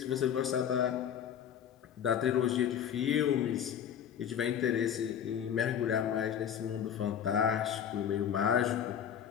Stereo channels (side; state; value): right; quieter; 9.0 dB